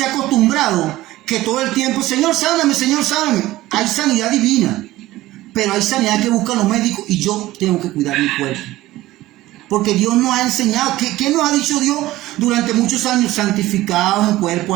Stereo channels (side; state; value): left; quieter; 16.7 dB